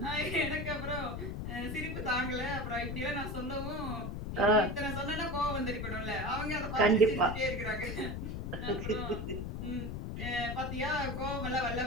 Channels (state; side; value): noise; left; rumble, 4 dB below the sound